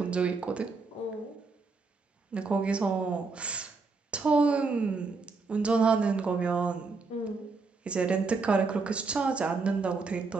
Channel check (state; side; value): quieter; left; 4.3 dB